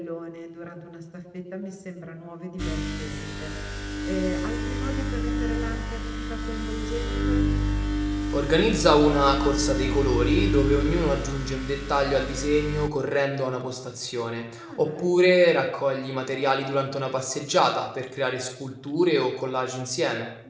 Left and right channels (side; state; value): both; identical; correlation 1.00